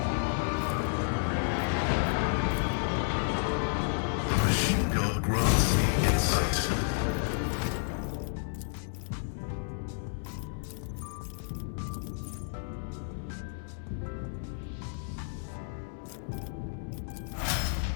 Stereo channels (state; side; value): silent; right; digital silence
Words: The machine gun grants me insight.